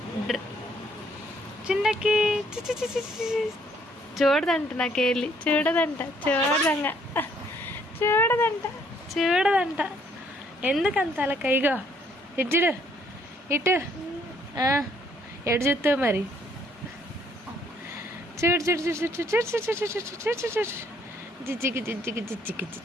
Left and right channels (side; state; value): both; normal; correlation 0.66